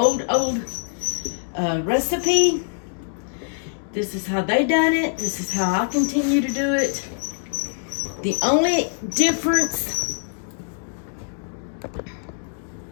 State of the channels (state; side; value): silent; right; digital silence